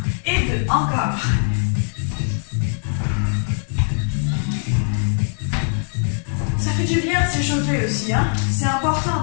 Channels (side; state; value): right; silent; digital silence